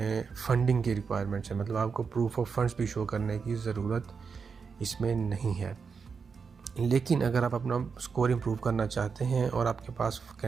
फंडिंग की रिक्वायरमेंट्स है। मतलब आपको प्रूफ ऑफ फंड्स भी शो करने की ज़रूरत इसमें नहीं है। लेकिन अगर आप अपना स्कोर इम्प्रूव करना चाहते हैं और आपके पास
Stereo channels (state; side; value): quieter; left; 5.6 dB